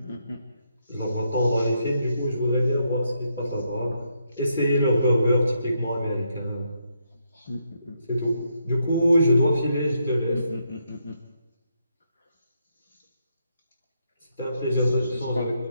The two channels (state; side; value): inverted; both; correlation -0.78